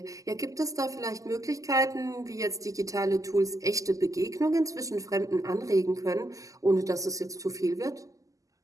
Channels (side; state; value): left; late; 0.16 ms